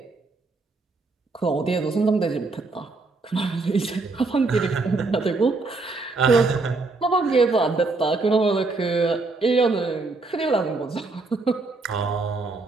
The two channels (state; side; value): quieter; left; 3.6 dB